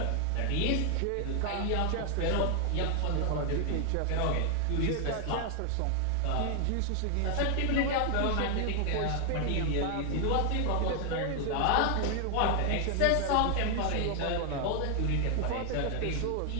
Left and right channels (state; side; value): different; both; correlation 0.00